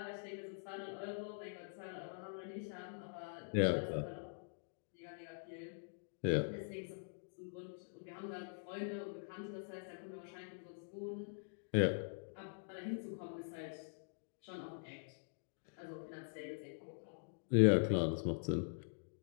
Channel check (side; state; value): right; silent; digital silence